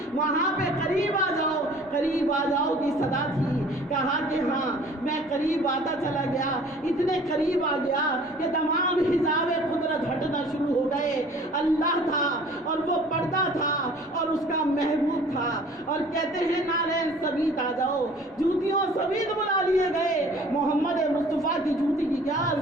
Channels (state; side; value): normal; both; correlation 0.50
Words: وہاں پہ قریب آ جاؤ، قریب آ جاؤ کی صدا تھی۔ کہا کہ ہاں میں قریب آتا چلا گیا، اتنے قریب آ گیا کہ تمام حجاب قدرت ہٹنا شروع ہو گئے۔ اللہ تھا اور وہ پردہ تھا اور اس کا محبوب تھا، اور کہتے ہیں نالین سبیت آ جاؤ، جوتیوں سبیت بلا لیے گئے۔ محمد مصطفیٰ کی جوتی کی کیا